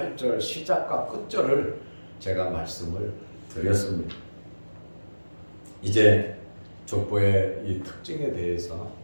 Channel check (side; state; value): both; inverted; correlation -1.00